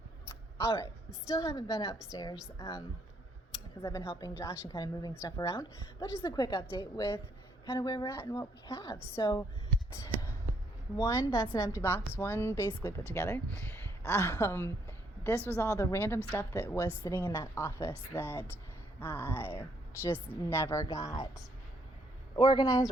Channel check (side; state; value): both; normal; correlation 0.71